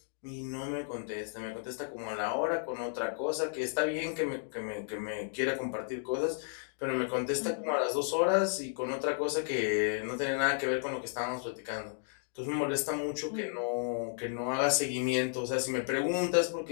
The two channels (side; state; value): right; silent; digital silence